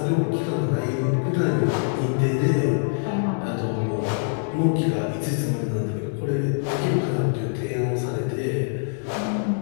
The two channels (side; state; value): right; silent; digital silence